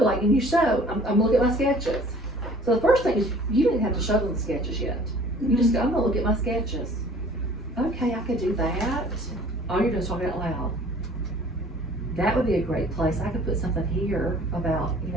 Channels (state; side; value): normal; both; correlation 0.51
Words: like, and you show, I'm looking at my sketches. So the first thing is, you didn't have to show them the sketches yet. You just go, I'm gonna look at my sketches. Okay, I could do that. All you're doing is talking out loud. That would be a great place. I could put something here about,